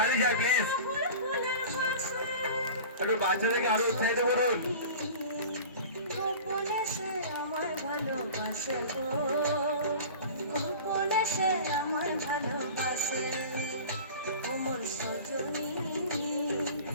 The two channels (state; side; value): inverted; both; correlation -0.38